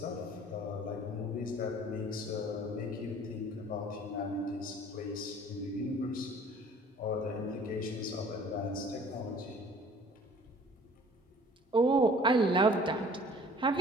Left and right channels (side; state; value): both; normal; correlation 0.51